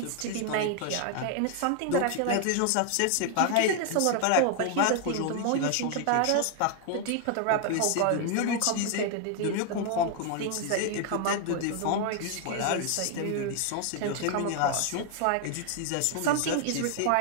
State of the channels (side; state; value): both; different; correlation 0.00